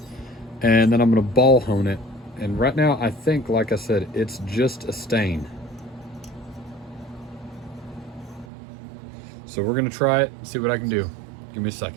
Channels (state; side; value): drops out; left; at 8.5 s